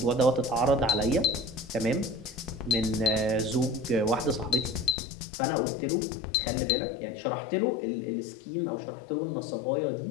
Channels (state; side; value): drops out; right; at 5.0 s